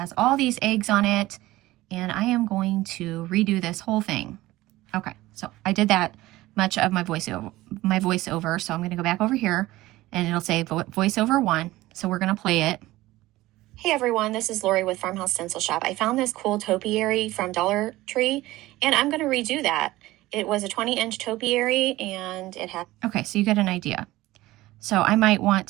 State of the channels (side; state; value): left; quieter; 17.6 dB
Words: all these eggs on it and I am going to redo this whole thing. Okay, so I did that much of my voiceover, so I'm gonna go back over here and it'll say voiceover 1, so we're gonna play it. Hey everyone, this is Lori with Farmhouse Stencil Shop. I found this cool topiary from Dollar Tree and I'm gonna redo that. It was a 20-inch topiary and it had... Okay, so you get an idea. So I might want